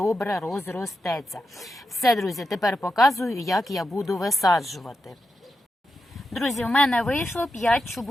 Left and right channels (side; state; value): both; normal; correlation 0.87